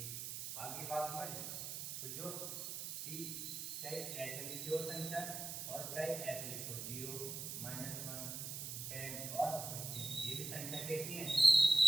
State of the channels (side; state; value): right; noise; hiss, 5 dB below the sound